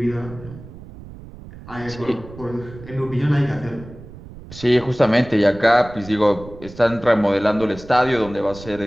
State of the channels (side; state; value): right; noise; rumble, 16 dB below the sound